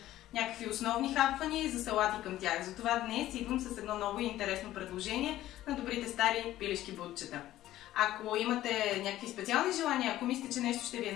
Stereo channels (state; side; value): quieter; right; 14.3 dB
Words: някакви основни хапвания и за салати към тях. Затова днес идвам с едно ново и интересно предложение на добрите стари пилешки бутчета. Ако имате някакви специални желания, ако мислите, че нещо ще ви е